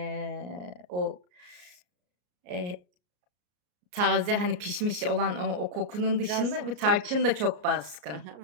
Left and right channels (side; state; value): left; late; 33 ms